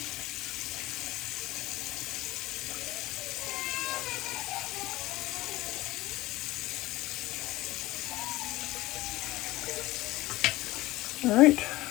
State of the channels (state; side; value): quieter; right; 18.5 dB